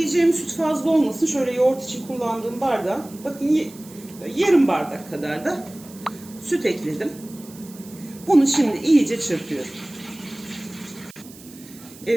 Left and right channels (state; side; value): noise; right; hiss, 21 dB below the sound